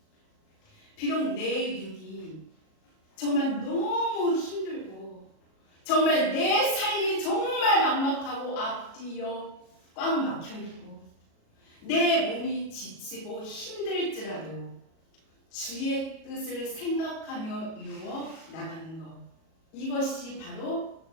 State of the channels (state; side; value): late; right; 37 ms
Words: 비록 내 육이 정말 너무 힘들고 정말 내 삶이 정말 막막하고 앞뒤여 꽉 막혀있고 내 몸이 지치고 힘들지라도 주의 뜻을 생각하며 이루어 나가는 것, 이것이 바로